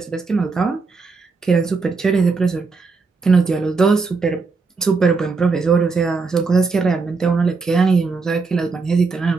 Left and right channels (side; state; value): left; quieter; 4.4 dB